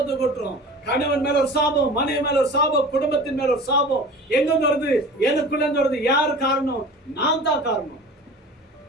கொட்டுறோம். கணவன் மேல ஒரு சாபம், மனைவி மேல ஒரு சாபம், குடும்பத்தின் மேல ஒரு சாபம். எங்க வருது? எனக்குள்ள இருந்து வருது. யாரு காரணம்? நான் தான் காரணம்.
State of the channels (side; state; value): both; normal; correlation 0.39